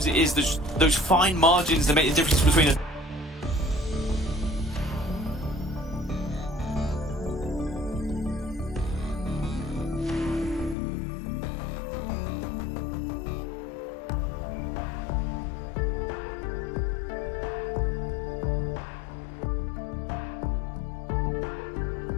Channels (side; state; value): right; drops out; at 10.8 s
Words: it is those fine margins that make the difference between a